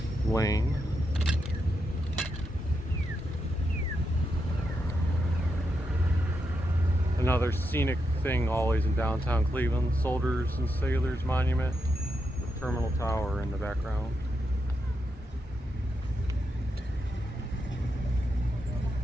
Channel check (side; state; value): both; normal; correlation 0.84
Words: lane. Another scenic thing always in downtown Cleveland, Soldiers and Sailors Monument with Terminal Tower in the background.